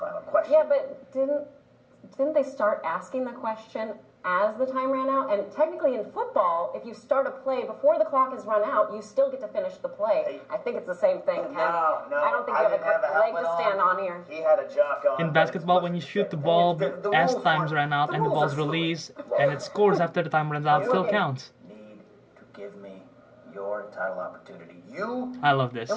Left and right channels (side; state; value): both; identical; correlation 1.00